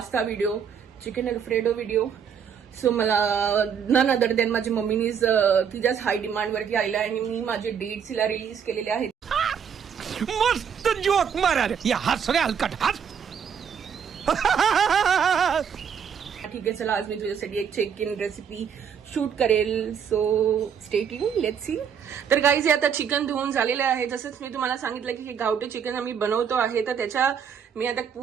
video, chicken alfredo video. So मला नन अदर दॅन माझ्या मम्मीनीच तिच्याच हाय डिमांड वरती आलेला आणि मी माझे डेट्स हिला रिलीज केलेले आहेत. मस्त जोक मारा रे, या हस रे हलकट हस. ठीक आहे, चला आज मी तुझ्यासाठी एक चेक इन रेसिपी शूट करेल. So stay tune, let's see. तर गाईज हे आता चिकन धुवून झालेलं आहे. जसंच मी तुम्हाला सांगितलं की हे गावठी चिकन आम्ही बनवतो आहे, तर त्याच्या मी आता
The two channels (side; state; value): left; quieter; 7.5 dB